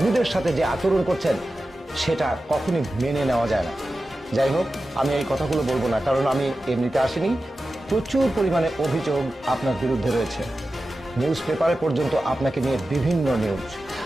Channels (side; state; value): both; normal; correlation 0.93